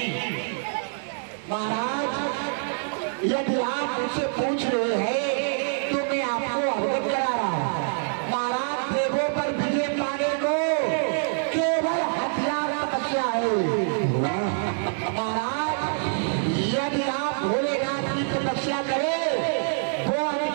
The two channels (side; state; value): left; silent; 61 dB below the other